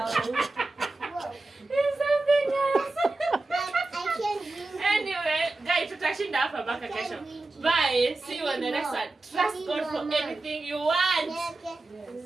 It's something else. I can't drink. Anyway, guys, tutashinda hapa mpaka kesho. Bye. See you on the next one. Trust God for anything you want. Yes.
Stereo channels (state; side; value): quieter; left; 3.1 dB